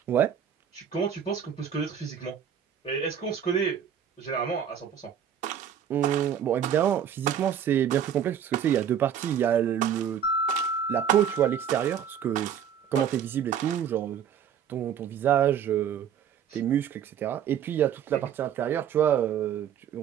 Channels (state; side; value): quieter; left; 8.6 dB